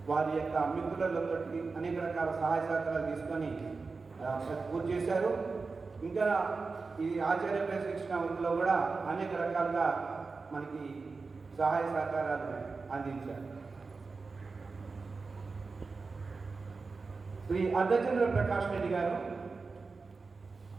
వారి యొక్క మిత్రులతో అనేక రకాల సహాయ సహకారాలు తీసుకొని పూర్తి చేశారు. ఇంకా ఈ ఆచార్య శిక్షణ వృత్తిలో కూడా అనేక రకాలుగా మనకి సహాయ సహకారాలు అందించారు. శ్రీ అర్ధచంద్ర ప్రకాష్ రెడ్డి గారు,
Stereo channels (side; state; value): left; quieter; 4.3 dB